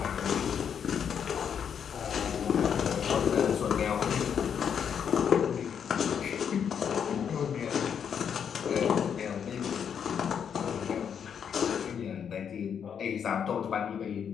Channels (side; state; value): right; quieter; 7.8 dB